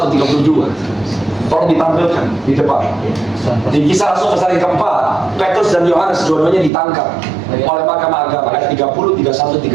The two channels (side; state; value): left; drops out; at 6.7 s